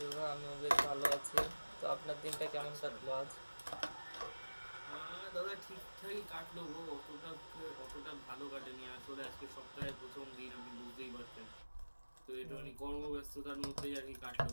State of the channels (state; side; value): inverted; both; correlation -1.00